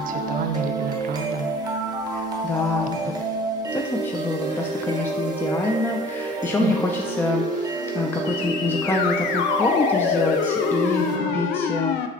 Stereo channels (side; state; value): both; normal; correlation 0.48